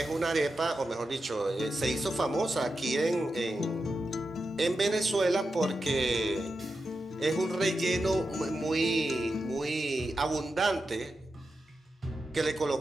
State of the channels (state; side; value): normal; both; correlation 0.89